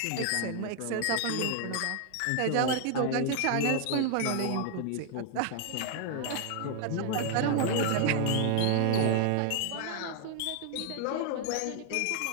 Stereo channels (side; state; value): both; different; correlation 0.00